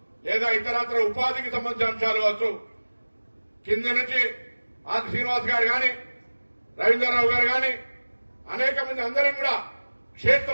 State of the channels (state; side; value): inverted; both; correlation -1.00